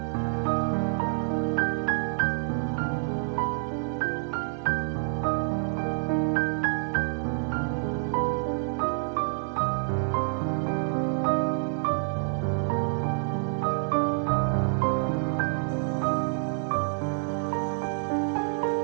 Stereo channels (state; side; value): silent; left; 60 dB below the other